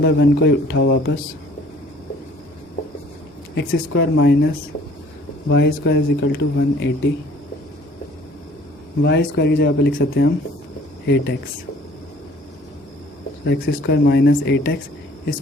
1 को उठाओ वापस, x square minus y square is equal to 180। y square की जगह पर लिख सकते हैं हम 8x, सो x स्क्वायर माइनस 8x,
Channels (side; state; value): both; normal; correlation 0.54